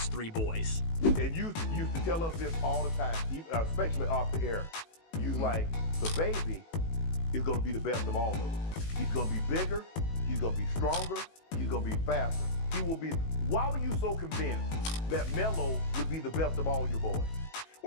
three boys. And you used to tell us this all the time, especially off the air. You like, the baby is going to be the best of all of them. He's going to be bigger, he's going to be stronger, he's going to be faster. He will be. Why were you so convinced that Melo would be the best of all your boys?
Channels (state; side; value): late; right; 18 ms